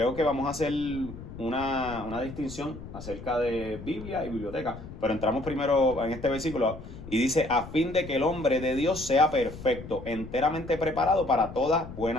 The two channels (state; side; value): noise; left; rumble, 13 dB below the sound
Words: que vamos a hacer una distinción acerca de Biblia y biblioteca, pero entramos primero en este versículo y dice: a fin de que el hombre de Dios sea perfecto, enteramente preparado para toda